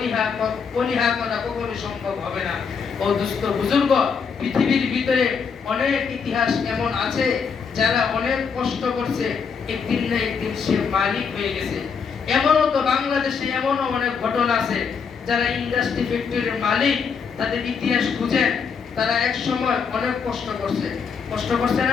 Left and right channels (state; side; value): quieter; right; 6.1 dB